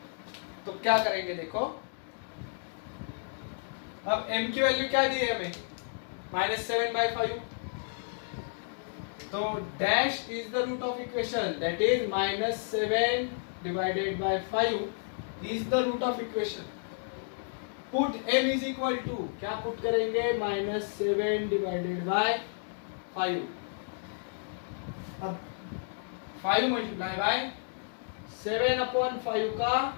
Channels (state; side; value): silent; right; digital silence